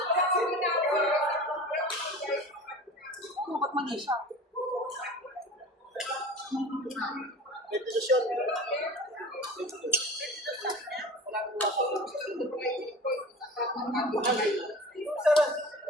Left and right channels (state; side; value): normal; both; correlation 0.38